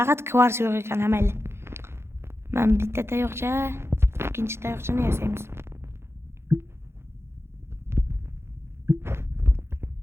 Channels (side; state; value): left; late; 0.12 ms